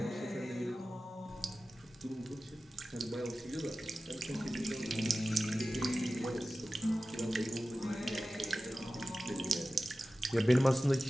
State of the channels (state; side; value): normal; both; correlation 0.95